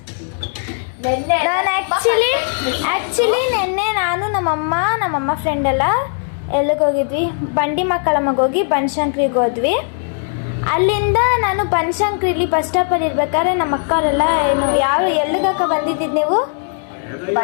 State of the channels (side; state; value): right; silent; 63 dB below the other